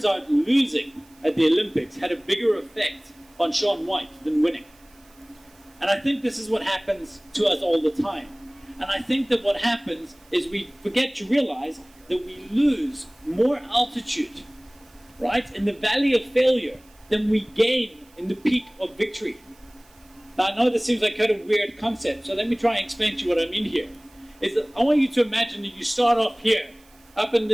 out losing at the Olympics had a bigger effect on Shaun White than winning. And I think this is what happens to us all the time. And I think that what happens is we forget to realize that we lose more altitude, right, in the valley of failure than we gain in the peak of victory. Now, I know this seems like kind of a weird concept, so let me try and explain to you what I mean here. Is that I want you to imagine that you start off here, up in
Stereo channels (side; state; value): right; noise; hiss, 30 dB below the sound